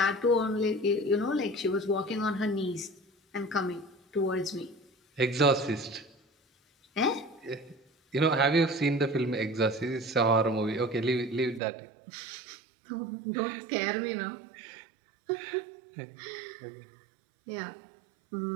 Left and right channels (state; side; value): drops out; left; at 11.6 s